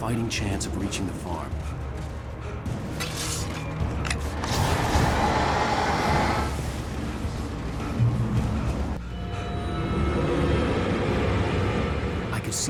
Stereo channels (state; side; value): identical; both; correlation 1.00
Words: chance of reaching the farm. could